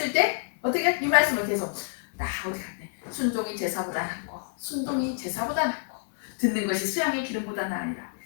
때 어떻게 이 말씀을 계속 나 어디 갔네 순종이 제사보다 낫고 순종이 제사보다 낫고 듣는 것이 수양의 기름보다 나으니라.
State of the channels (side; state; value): right; silent; 59 dB below the other